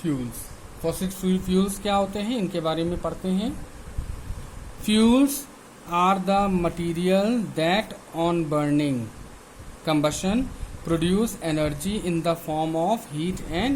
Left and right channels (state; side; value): identical; both; correlation 1.00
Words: Fossil fuels क्या होते हैं, इनके बारे में पढ़ते हैं। Fuels are the material that on burning combustion produce energy in the form of heat